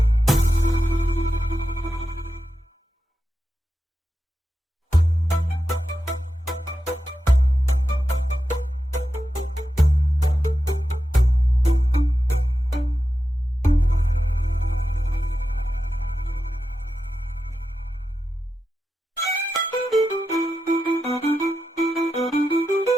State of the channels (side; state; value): both; normal; correlation 0.90